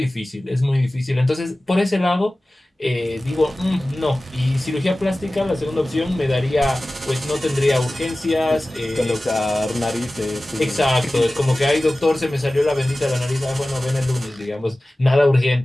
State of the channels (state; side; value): normal; both; correlation 0.97